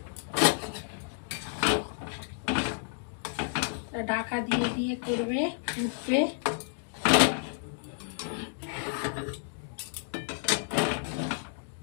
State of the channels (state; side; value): silent; right; digital silence